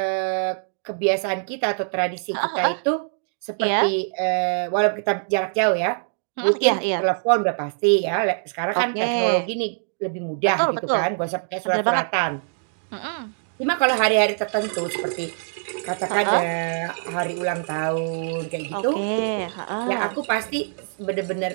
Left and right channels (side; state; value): left; silent; digital silence